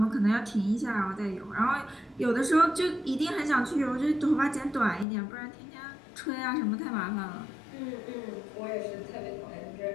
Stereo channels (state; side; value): drops out; right; at 5.1 s